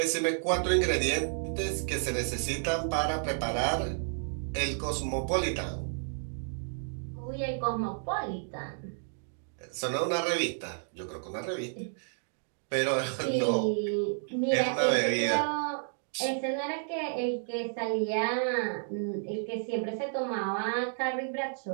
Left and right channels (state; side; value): silent; left; digital silence